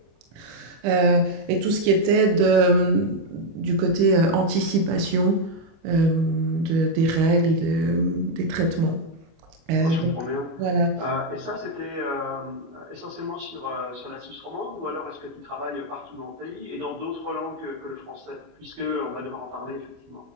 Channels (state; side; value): late; left; 25 ms